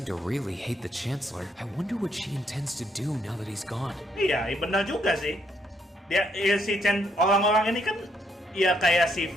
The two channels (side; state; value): both; normal; correlation 0.73